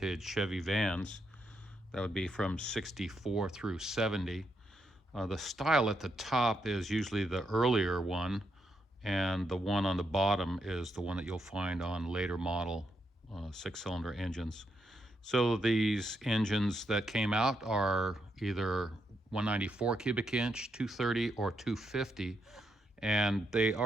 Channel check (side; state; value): both; normal; correlation 0.80